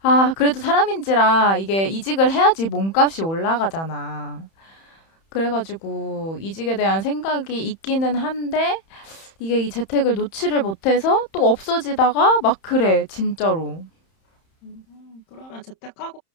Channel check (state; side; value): late; right; 31 ms